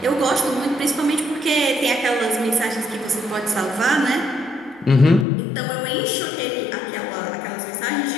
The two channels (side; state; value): right; drops out; at 5.2 s